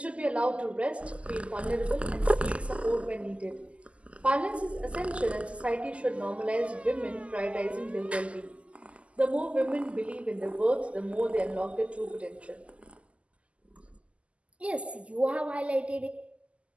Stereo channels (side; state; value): left; late; 0.060 ms